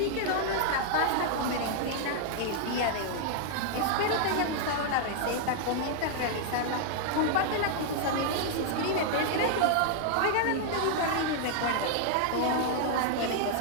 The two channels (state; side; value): different; both; correlation -0.01